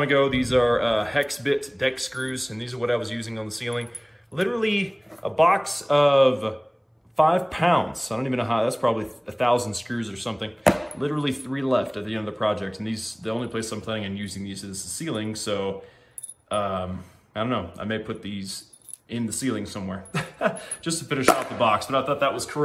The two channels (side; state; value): both; identical; correlation 1.00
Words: ago. These are hex bit deck screws, and these are what I was using on the ceiling. Literally a box of 5 pounds. I don't even know how, that's probably 1,000 screws or something. Literally 3 left at the end of the project. And these, the only place I'm planning on using these is the ceiling. So, I don't know. I may put these in the ceiling somewhere just to finish off the box. But I thought that was